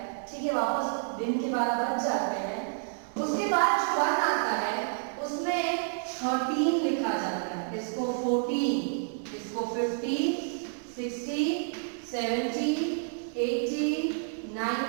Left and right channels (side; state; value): left; silent; digital silence